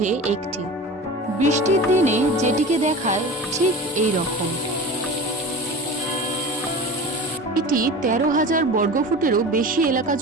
একটি। বৃষ্টির দিনে যেটিকে দেখায় ঠিক এই রকম। এটি 13,000 বর্গফুটেরও বেশি এলাকা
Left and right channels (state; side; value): normal; both; correlation 0.33